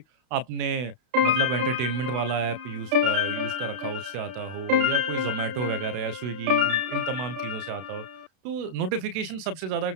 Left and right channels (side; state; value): left; late; 32 ms